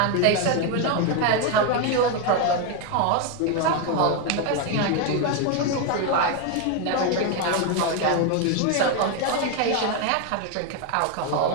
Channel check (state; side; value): different; both; correlation 0.02